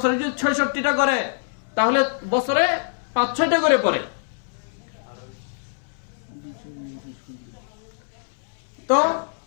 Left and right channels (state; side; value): silent; right; 62 dB below the other